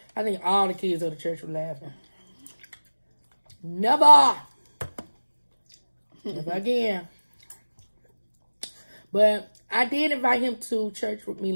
I think all the kids of the church were laughing. Never. Never again. But I did invite him to church with me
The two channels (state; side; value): inverted; both; correlation -1.00